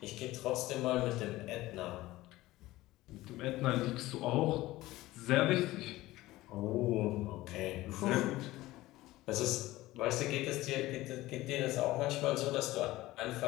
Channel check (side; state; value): right; quieter; 17.6 dB